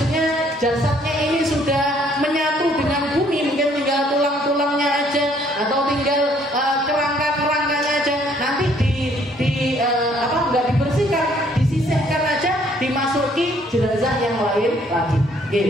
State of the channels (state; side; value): normal; both; correlation 0.63